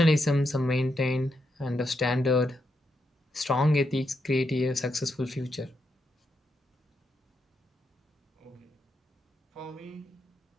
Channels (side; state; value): both; normal; correlation 0.82